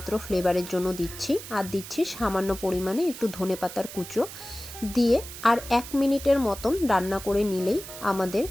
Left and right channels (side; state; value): right; noise; hiss, 12 dB below the sound